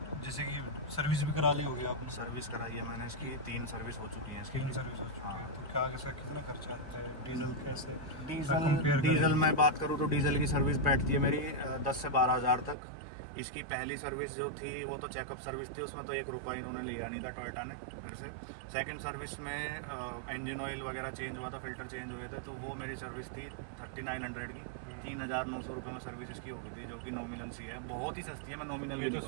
जैसे कि सर्विस भी करा ली होगी आपने? सर्विस कराई है मैंने इसकी, 3 सर्विस हो चुकी हैं इसकी। 3 सर्विस हो चुकी है। तो क्या कैसा कितना खर्चा आता है? डीजल कैसे? डीजल मैं बात करूँ तो डीजल की सर्विस बैठती है मेरी 10 से 12 हज़ार तक। इसकी पहली सर्विस जो थी वो तो चेकअप सर्विस थी, उसमें तो 1 रुपया इन्होंने लिया नहीं था टोयोटा ने मेरे से। सेकंड सर्विस में इंजन ऑयल वगैरह चेंज हुआ था, फिल्टर चेंज हुए थे, तो वो मेरी सर्विस थी 3900 की। 3,900 रुपये में सर्विस इसकी हो गई थी, जो कि नॉमिनल सी है, बहुत ही सस्ती है। मैं नॉमिनल भी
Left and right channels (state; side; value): drops out; left; at 12.8 s